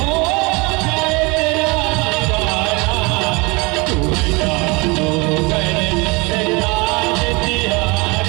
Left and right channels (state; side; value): quieter; left; 27.1 dB